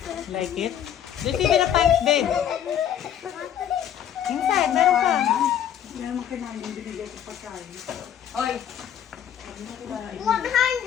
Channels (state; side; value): quieter; right; 9.8 dB